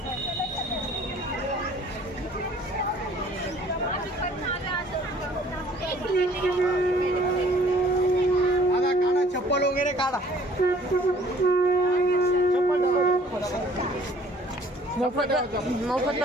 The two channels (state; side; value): normal; both; correlation 0.55